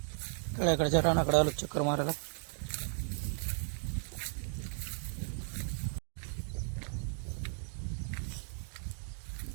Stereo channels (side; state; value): left; silent; digital silence